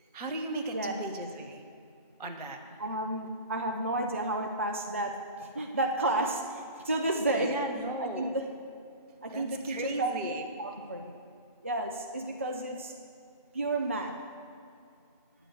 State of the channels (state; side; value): inverted; both; correlation -0.31